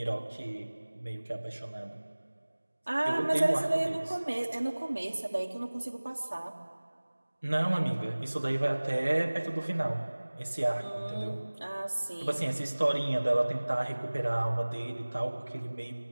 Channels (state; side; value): inverted; both; correlation -1.00